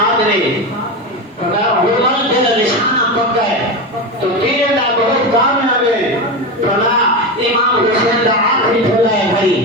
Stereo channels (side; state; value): both; normal; correlation 0.18